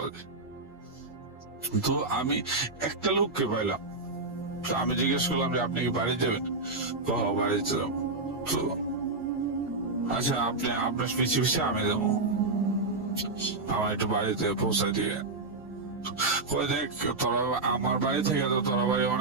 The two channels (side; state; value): left; quieter; 3.4 dB